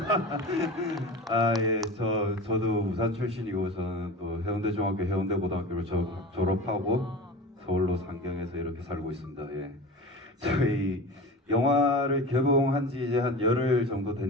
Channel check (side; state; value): both; normal; correlation 0.32